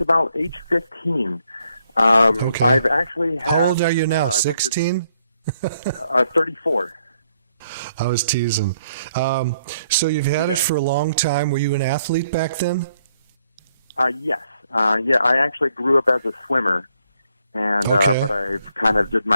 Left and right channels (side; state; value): both; inverted; correlation -0.73